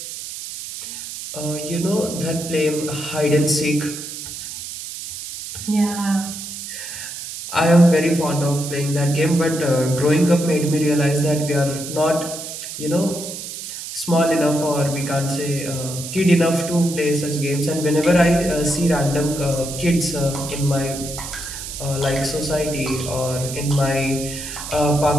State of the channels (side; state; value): right; noise; hiss, 9 dB below the sound